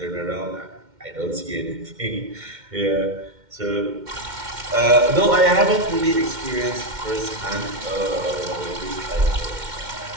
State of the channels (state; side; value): late; left; 2.1 ms